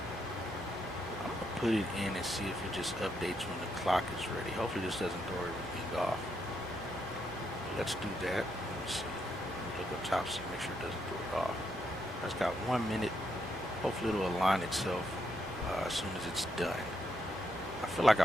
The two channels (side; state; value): both; normal; correlation 0.79